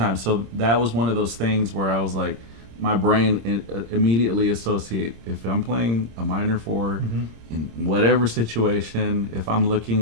so that was one of those things where I was like, my brain immediately associate if I'm playing a minor 4 in whatever situation, if I'm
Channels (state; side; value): late; left; 26 ms